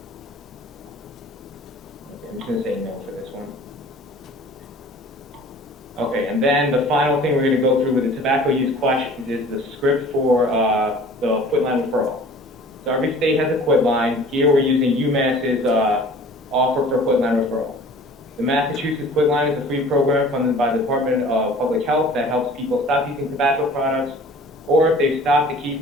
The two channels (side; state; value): both; normal; correlation 0.47